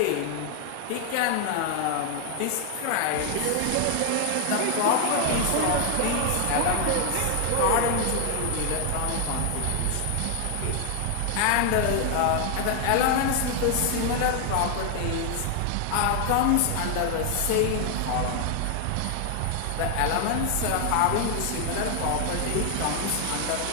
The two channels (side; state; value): both; different; correlation 0.00